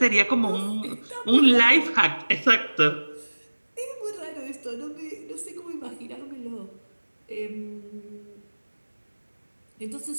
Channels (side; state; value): both; inverted; correlation -1.00